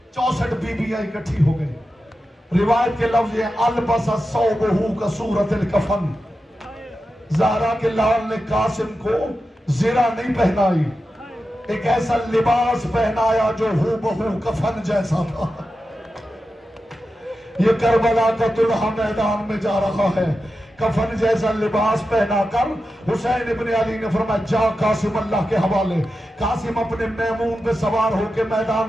64 बीबियां इकट्ठी हो गई। रिवायत के लफ्ज है अलबसा सौबहू का सूरतिल कफन। ज़हरा के लाल ने कासिम को ज़िरा नहीं पहनाई, एक ऐसा लिबास पहनाया जो हूबहू कफन जैसा था। ये करबला का दुल्हा मैदान में जा रहा है, कफन जैसा लिबास पहनाकर हुसैन इब्न अली ने फरमाया जा कासिम अल्लाह के हवाले। कासिम अपने मैमून पे सवार होकर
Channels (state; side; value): normal; both; correlation 0.91